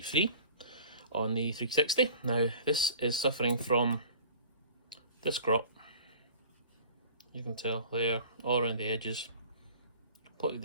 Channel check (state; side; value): inverted; both; correlation -0.45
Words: 3 on the 360. Now this is suffering from disc rot. You can tell there, all around the edges, completely